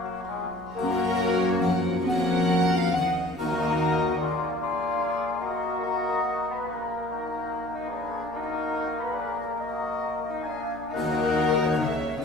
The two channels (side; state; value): left; noise; hum, 23 dB below the sound